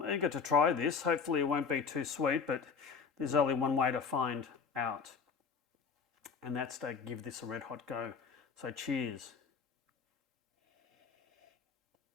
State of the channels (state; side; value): quieter; right; 5.8 dB